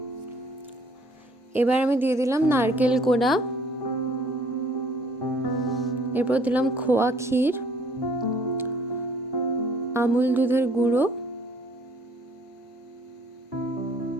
এবার আমি দিয়ে দিলাম নারকেল কোড়া, এরপর দিলাম খোয়া ক্ষীর, আমুল দুধের গুঁড়ো,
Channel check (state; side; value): normal; both; correlation 0.59